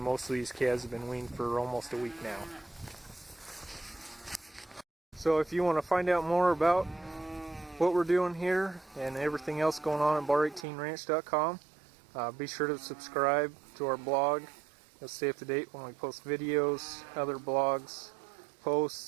of these calves have been weaned for almost a week now. So if you want to find out more about what we're doing here and everything else going on at bar18ranch.com, be sure to subscribe to our blog. You'll stay up to date when we post videos, other blogs,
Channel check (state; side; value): drops out; left; at 10.7 s